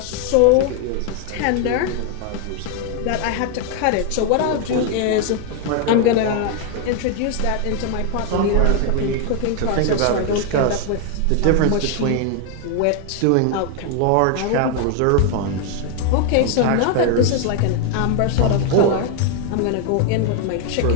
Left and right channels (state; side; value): different; both; correlation 0.01